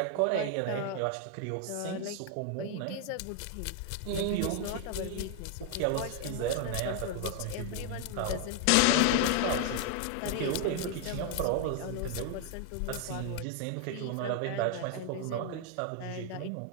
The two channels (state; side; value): different; both; correlation 0.00